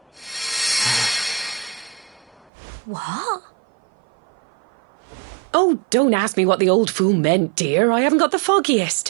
What? Oh, don't ask me what the old fool meant, dear. I haven't got the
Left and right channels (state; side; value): drops out; left; at 2.5 s